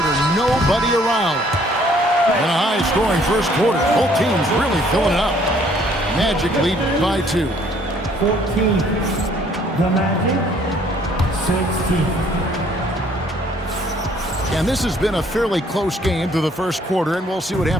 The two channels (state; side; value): normal; both; correlation 0.61